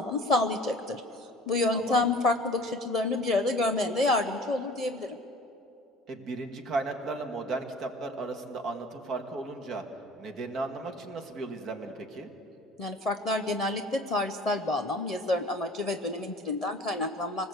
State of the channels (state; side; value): normal; both; correlation 0.45